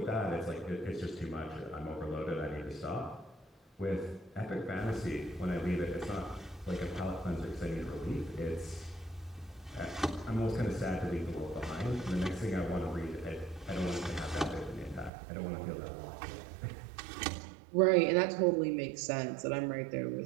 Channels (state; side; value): drops out; left; at 15.1 s